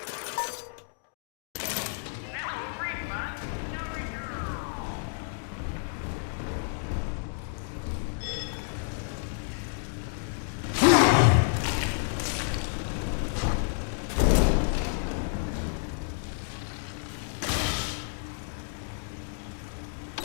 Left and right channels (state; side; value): silent; right; 58 dB below the other